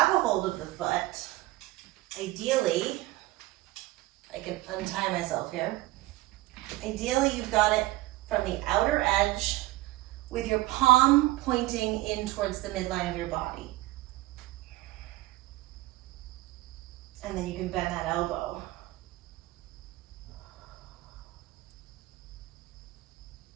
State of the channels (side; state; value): left; quieter; 18.8 dB